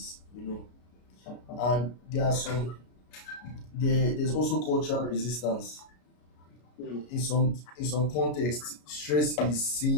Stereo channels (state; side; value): late; right; 33 ms